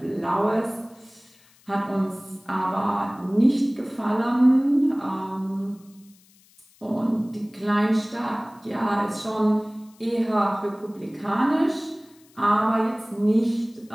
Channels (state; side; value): noise; left; hiss, 30 dB below the sound